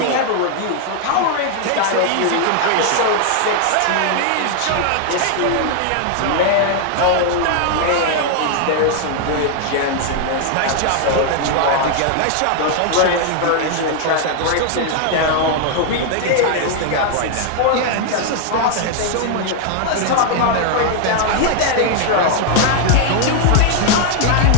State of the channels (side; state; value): both; different; correlation 0.00